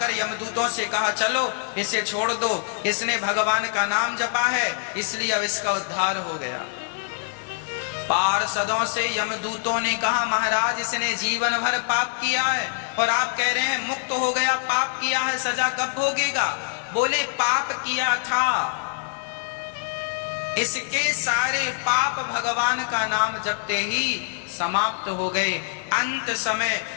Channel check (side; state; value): right; silent; 62 dB below the other